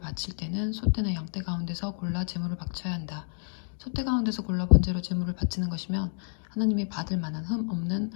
때는 소떼나 양떼 가운데서 골라 제물을 바쳐야 한다. 소떼 가운데서 골라 번제로 제물을 바치는 것이면 하나님이 받을 만한 흠 없는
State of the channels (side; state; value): right; silent; digital silence